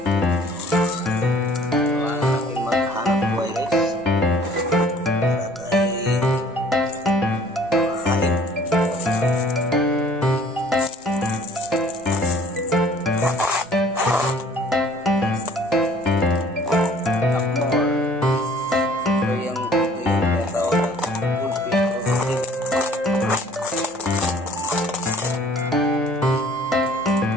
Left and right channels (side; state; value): both; normal; correlation 0.54